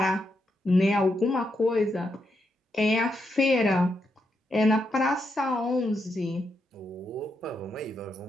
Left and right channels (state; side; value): normal; both; correlation 0.82